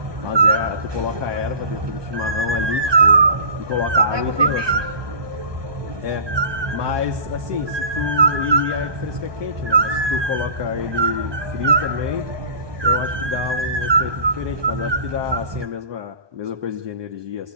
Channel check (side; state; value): left; late; 1.2 ms